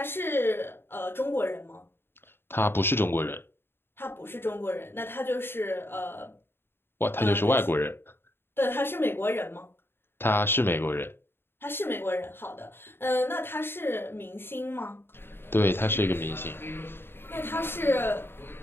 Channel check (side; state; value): right; late; 0.11 ms